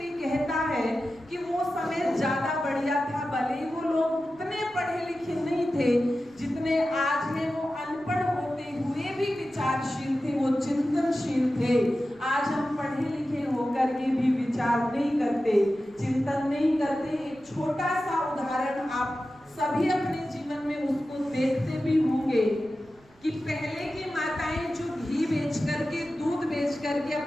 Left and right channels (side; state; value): right; noise; rumble, 28 dB below the sound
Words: कहता है कि वो समय ज्यादा बढ़िया था। भले ही वो लोग उतने पढ़े लिखे नहीं थे जितने आज हैं, वो अनपढ़ होते हुए भी विचारशील थे, वो चिंतनशील थे। आज हम पढ़े लिखे होकर के भी विचार नहीं करते, चिंतन नहीं करते। एक छोटा सा उदाहरण आप सभी अपने जीवन में उसको देखते भी होंगे कि पहले की माताएं जो घी बेच करके, दूध बेच करके